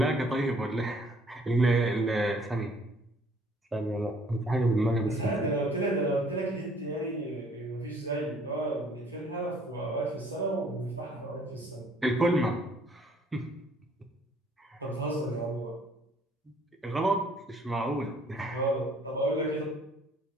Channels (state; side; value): normal; both; correlation 0.60